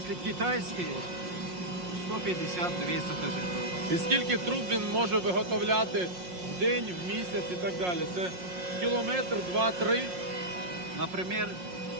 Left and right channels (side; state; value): left; late; 5.6 ms